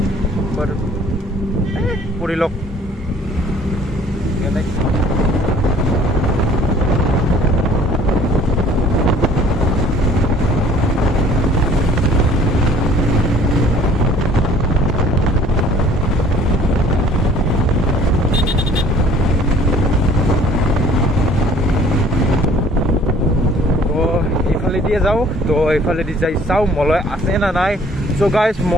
Purilok দিয়ে যাও তো এইফালে দি যাই চাও মলয় আছে না নাই সো গাইস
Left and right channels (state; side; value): normal; both; correlation 0.54